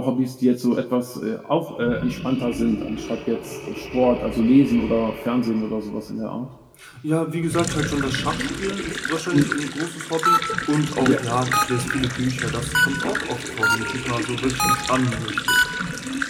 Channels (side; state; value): both; identical; correlation 1.00